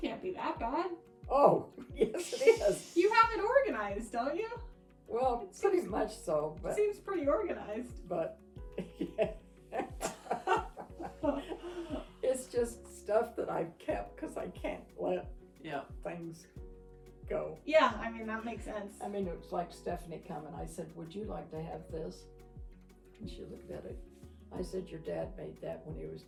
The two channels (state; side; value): identical; both; correlation 1.00